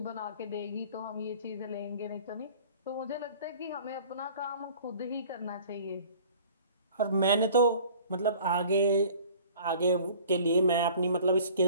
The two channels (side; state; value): both; inverted; correlation -0.49